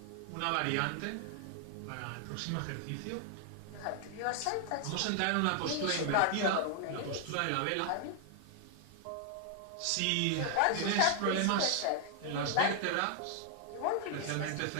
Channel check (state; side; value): different; both; correlation 0.00